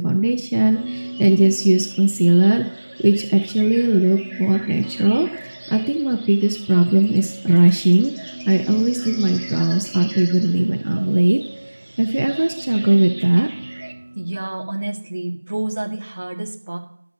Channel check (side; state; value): both; inverted; correlation -1.00